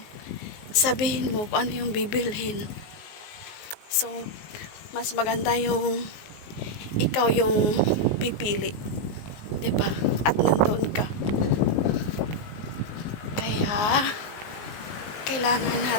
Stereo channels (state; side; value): late; right; 19 ms